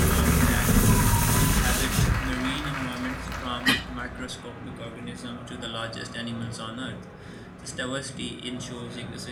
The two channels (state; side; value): identical; both; correlation 1.00